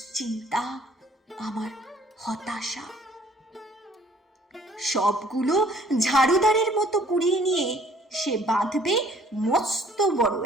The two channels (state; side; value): normal; both; correlation 0.58